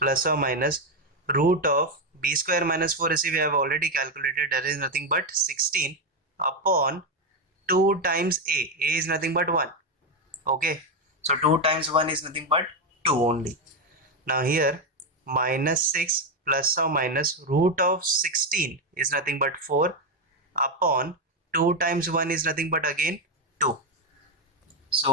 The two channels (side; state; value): both; normal; correlation 0.08